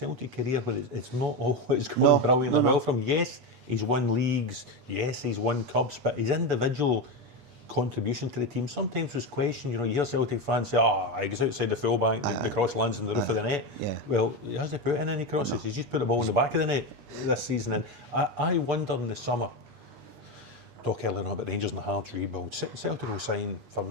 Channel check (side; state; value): left; late; 8.3 ms